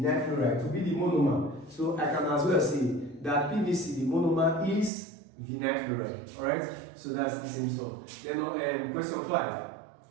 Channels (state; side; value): drops out; left; at 4.9 s